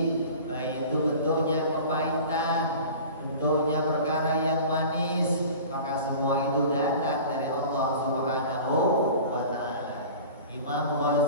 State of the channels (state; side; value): inverted; both; correlation -0.40